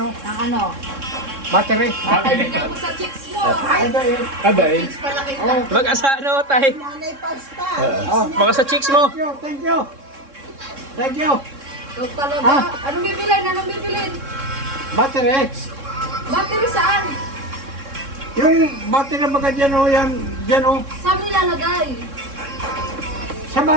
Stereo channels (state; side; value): late; left; 3.6 ms